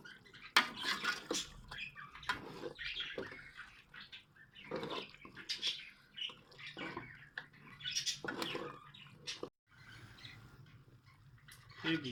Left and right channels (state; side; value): identical; both; correlation 1.00